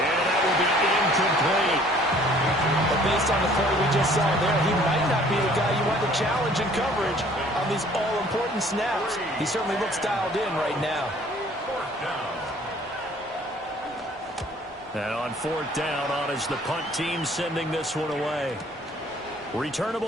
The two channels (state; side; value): normal; both; correlation 0.55